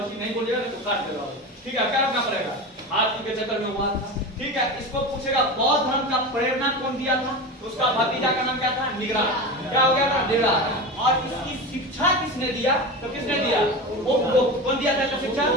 नहीं बोलेगा तो काट देगा, ठीक है, क्या रखना पड़ेगा? हाथी के चक्कर में हुआ था, ठीक है। इसको पूछेगा बौद्ध धर्म का प्रेरणा कौन दिया था? उसका भतीजा का नाम क्या था? निगरात। क्या हो गया था? निगरात। और इसकी शिक्षा किसने दिया? तो किसने दिया? उपगुप्त। कौन दिया था शिक्षा?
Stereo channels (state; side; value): normal; both; correlation 0.25